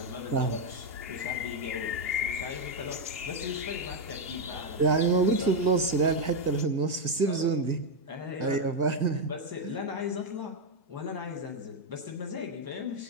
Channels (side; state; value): left; late; 1.7 ms